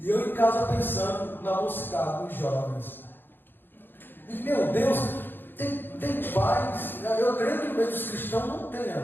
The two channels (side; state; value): right; late; 0.097 ms